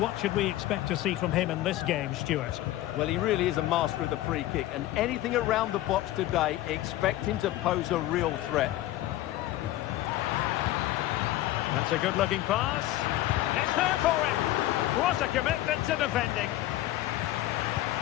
should we expect to see from him in this game, Stuart? Well, he really is a master of the free kick, and anything around the box today, expect him to pose a real threat. That's a good-looking pass. It's there for him. What a commitment to defending.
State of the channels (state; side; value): quieter; right; 15.3 dB